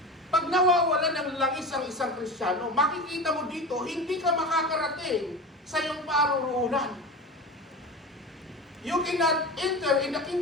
pag nawawala ng langis ang isang Kristiyano, makikita mo dito, hindi ka makakarating sa iyong paruroonan. You cannot enter in the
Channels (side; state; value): both; normal; correlation 0.29